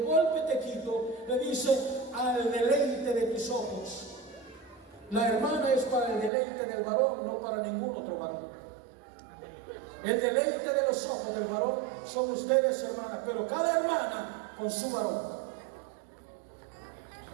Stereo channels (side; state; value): left; drops out; at 6.3 s